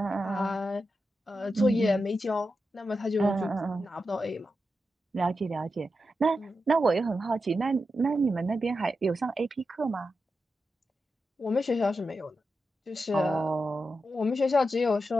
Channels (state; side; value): normal; both; correlation 0.89